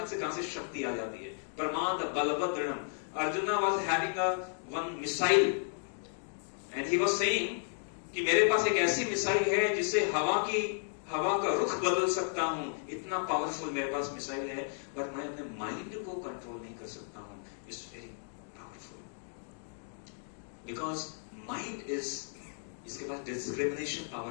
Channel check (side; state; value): right; silent; digital silence